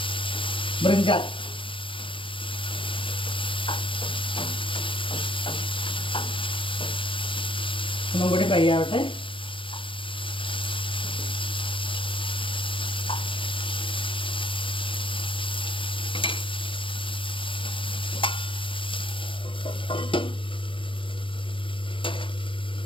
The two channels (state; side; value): late; right; 0.25 ms